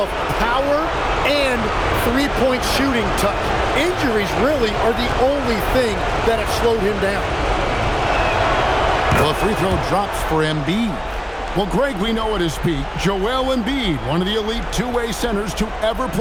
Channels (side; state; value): both; identical; correlation 1.00